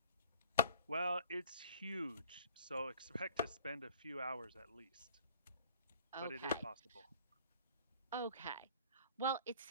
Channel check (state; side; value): inverted; both; correlation -0.51